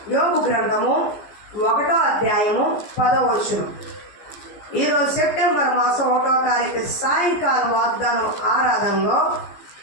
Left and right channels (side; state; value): right; late; 15 ms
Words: యోబు గ్రంథము 1వ అధ్యాయము 10వ వచనం. ఈరోజు సెప్టెంబర్ మాసం 1వ తారీఖు సాయంకాలం వాగ్దానం ఆరాధనలో